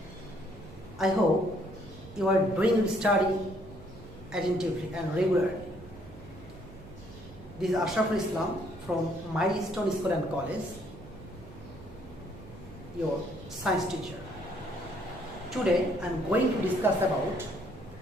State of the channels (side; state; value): right; noise; hum, 18 dB below the sound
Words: I hope you are doing your study attentively and regularly. This is Ashraful Islam from Milestone School and College, your science teacher. Today I am going to discuss about